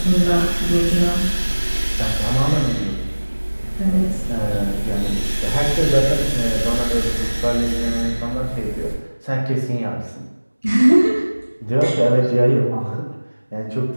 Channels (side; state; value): both; inverted; correlation -1.00